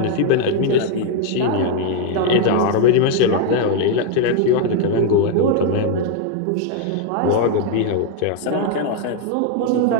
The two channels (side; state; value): both; different; correlation 0.00